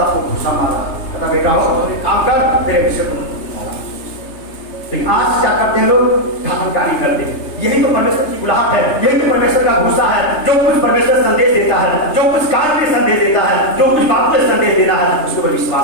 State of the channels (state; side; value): late; right; 3.3 ms